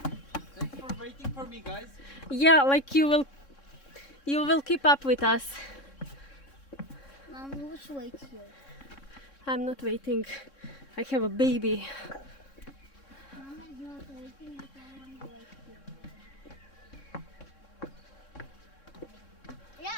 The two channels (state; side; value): late; right; 3.6 ms